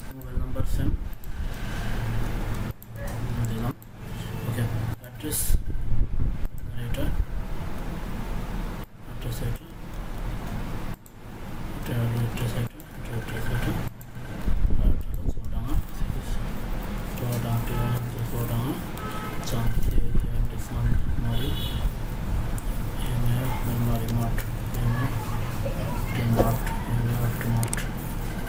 মোবাইল নাম্বার সেম দিলাম। ওকে, অ্যাড্রেস এটা, অ্যাড্রেস এটা, এটা হলো অ্যাড্রেস এটা, এটা অ্যাড্রেস এটা, আর এটা হলো চুয়াডাঙ্গা, চুয়াডাঙ্গা চাঁদপুর মারি মারি মাঠ মাঠ।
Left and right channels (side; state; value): both; identical; correlation 1.00